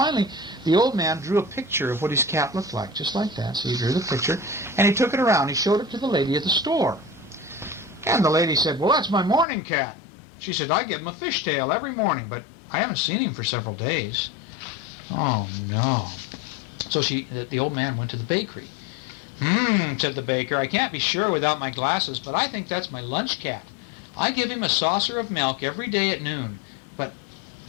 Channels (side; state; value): right; drops out; at 9.5 s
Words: the old man drew a picture of what his cat looked like, just like that. So he drew the picture, and he took it around. He showed it to the lady at the store. And the lady said, well, that's my morning cat. She said, I give him a fishtail every morning, but I haven't seen him for several days. Oh, no. So the old man went to the bakery. Said the baker, I can't be sure without my glasses, but I think that's my lunch cat. I give him a saucer of milk every day at noon, but